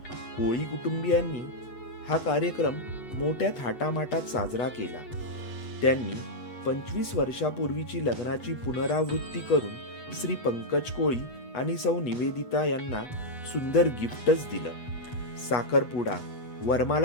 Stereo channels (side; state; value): right; late; 8.0 ms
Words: कोळी कुटुंबियांनी हा कार्यक्रम मोठ्या थाटामाटात साजरा केला। त्यांनी 25 वर्षापूर्वीची लग्नाची पुनरावृत्ती करून श्री पंकज कोळी आणि सौ निवेदिता यांना सुंदर गिफ्टच दिलं। साखरपुडा,